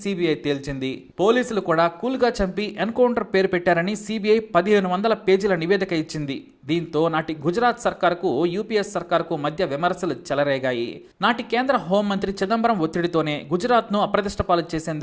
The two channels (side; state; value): both; identical; correlation 1.00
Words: తేల్చింది. పోలీసులు కూడా కూల్గా చంపి ఎన్కౌంటర్ పేరు పెట్టారని సిబిఐ 1500 పేజీల నివేదిక ఇచ్చింది. దీంతో నాటి గుజరాత్ సర్కారుకు, యూపీఎస్ సర్కారుకు మధ్య విమర్శలు చెలరేగాయి. నాటి కేంద్ర హోంమంత్రి చిదంబరం ఒత్తిడితోనే గుజరాత్ను అప్రతిష్టపాలు